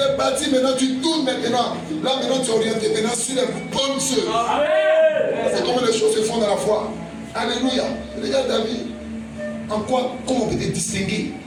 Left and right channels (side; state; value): both; identical; correlation 1.00